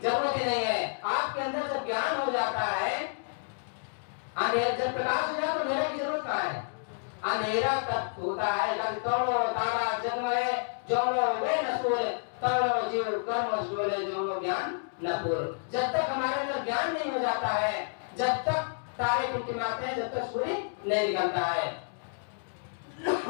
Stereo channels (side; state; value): right; silent; digital silence